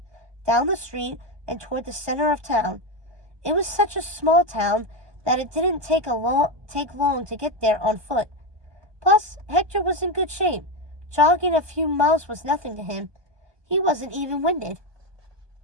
down the street, and toward the center of town. It was such a small town that it didn't take long to get there on foot. Plus, Hector was in good shape. Jogging a few miles was nothing to him. He wasn't even winded.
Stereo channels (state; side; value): late; left; 1.2 ms